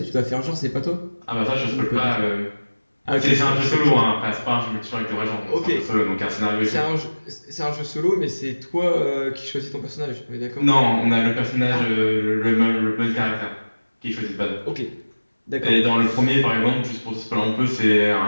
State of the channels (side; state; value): both; inverted; correlation -1.00